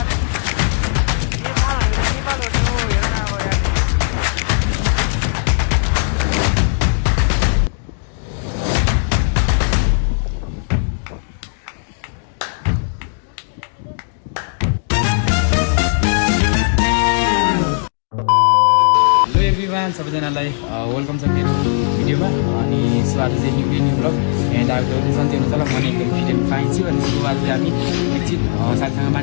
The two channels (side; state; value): right; silent; 63 dB below the other